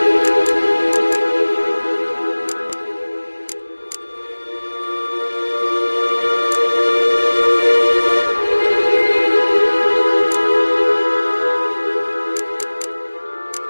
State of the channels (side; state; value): both; inverted; correlation -1.00